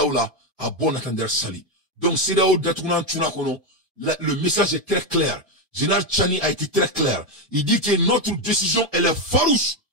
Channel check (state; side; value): normal; both; correlation 0.08